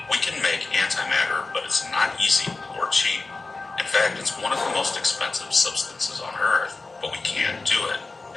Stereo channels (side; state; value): right; quieter; 3.6 dB